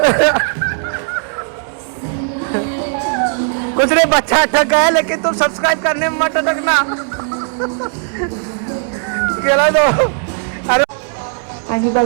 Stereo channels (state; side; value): silent; left; 67 dB below the other